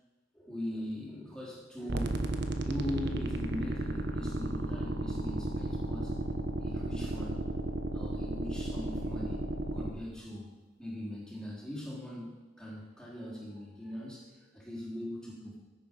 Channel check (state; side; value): normal; both; correlation 0.80